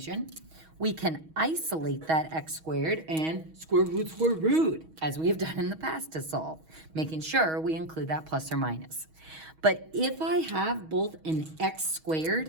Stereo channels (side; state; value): left; late; 6.3 ms